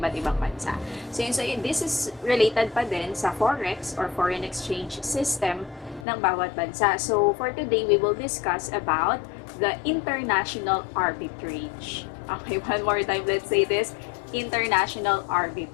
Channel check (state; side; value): drops out; right; at 6.1 s